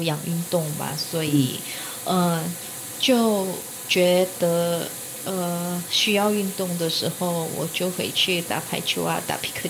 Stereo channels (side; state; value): both; identical; correlation 1.00